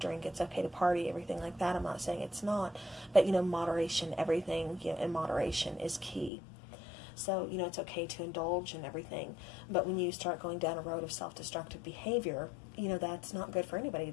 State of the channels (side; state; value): right; drops out; at 6.3 s